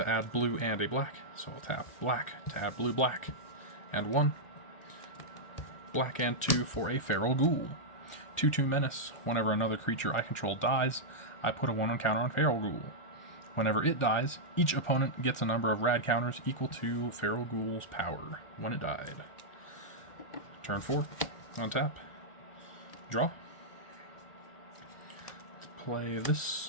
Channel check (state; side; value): late; right; 1.4 ms